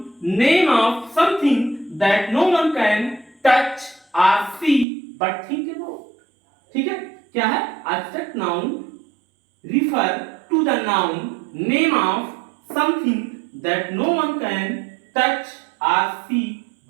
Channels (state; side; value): drops out; left; at 4.9 s